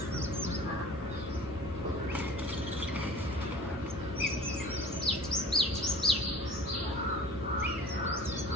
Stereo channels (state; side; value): normal; both; correlation 0.44